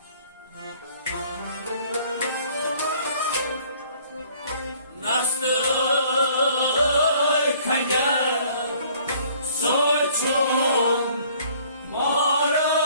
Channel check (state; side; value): inverted; both; correlation -0.57